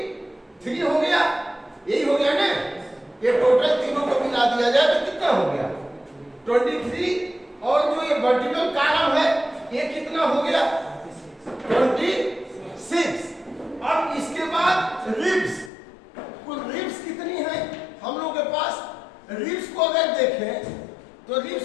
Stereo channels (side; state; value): right; drops out; at 15.7 s